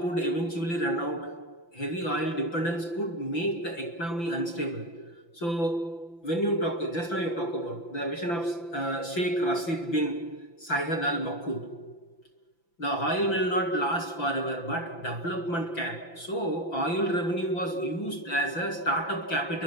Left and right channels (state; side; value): late; right; 5.9 ms